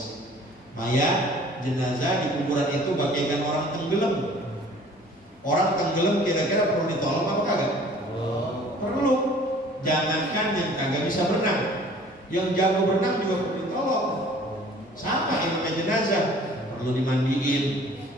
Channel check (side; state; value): both; normal; correlation 0.51